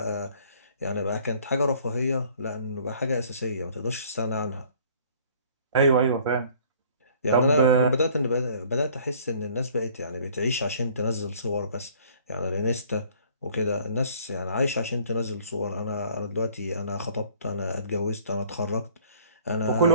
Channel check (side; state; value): both; inverted; correlation -0.54